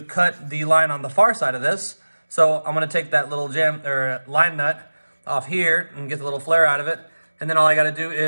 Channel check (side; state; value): both; inverted; correlation -1.00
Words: cut the line on the far side of this. So I'm gonna take that little line nut off here and get the little flare out of it. And then all I gotta do